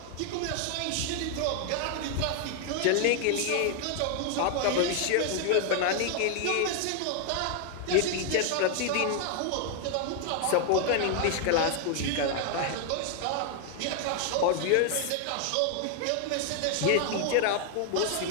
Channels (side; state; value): both; different; correlation 0.00